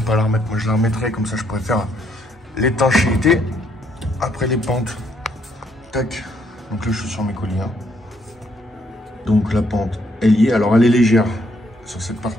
la remettre, moi je la remettrai. Comme ça, je pourrais faire l'étanchéité. Après les pentes. Tac. Donc là, je suis sur mes colliers. Hein. Donc la pente, elle y est. Alors, elle est légère sur cette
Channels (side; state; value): both; normal; correlation 0.71